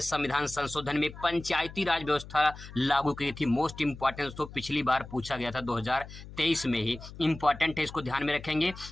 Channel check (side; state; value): left; noise; hum, 15 dB below the sound